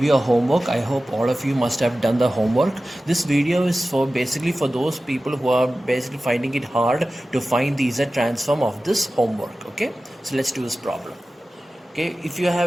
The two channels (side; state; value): both; normal; correlation 0.95